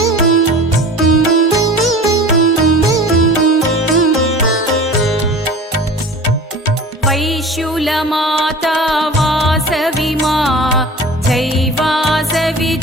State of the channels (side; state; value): both; normal; correlation 0.39